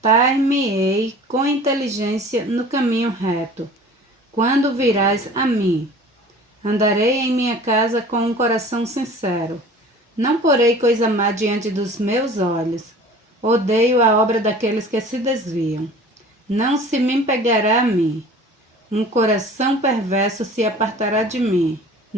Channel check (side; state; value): both; normal; correlation 0.44